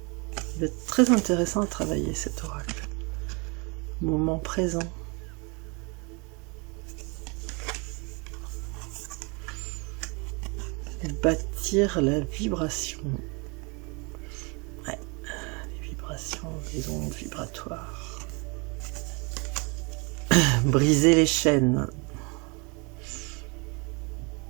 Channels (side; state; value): left; quieter; 30.7 dB